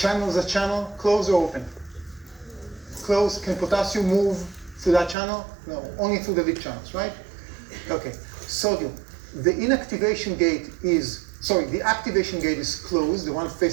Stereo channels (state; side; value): drops out; left; at 5.2 s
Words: is a channel, closed or open? Closed. Can potassium move through that channel? No, only through the lead channels, right? Okay, sodium. The activation gate is closed, the one